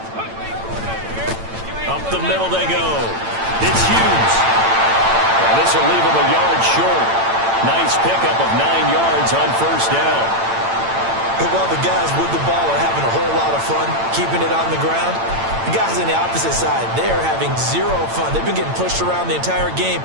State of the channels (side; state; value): left; late; 8.9 ms